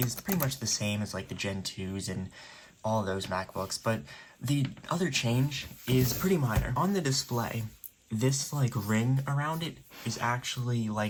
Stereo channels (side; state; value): both; identical; correlation 1.00